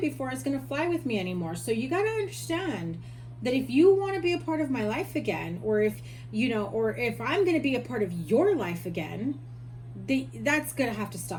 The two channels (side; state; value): both; identical; correlation 1.00